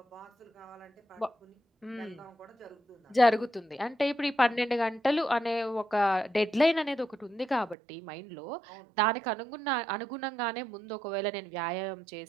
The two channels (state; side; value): drops out; left; at 7.8 s